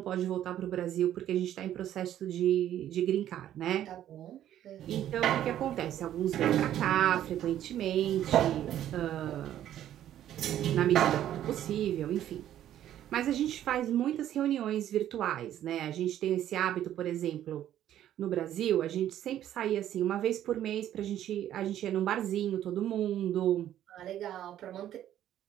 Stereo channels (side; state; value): left; quieter; 11.6 dB